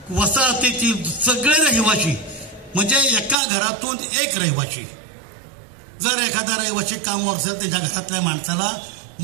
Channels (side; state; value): left; drops out; at 3.4 s